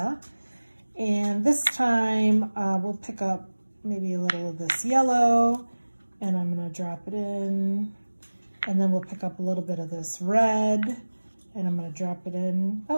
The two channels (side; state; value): both; inverted; correlation -1.00